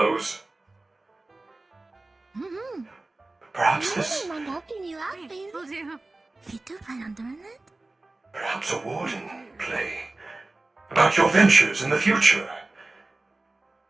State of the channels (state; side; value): quieter; left; 3.0 dB